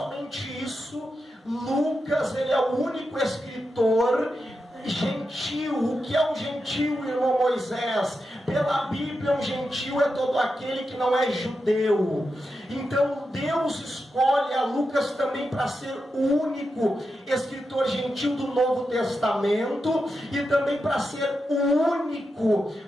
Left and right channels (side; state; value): both; normal; correlation 0.88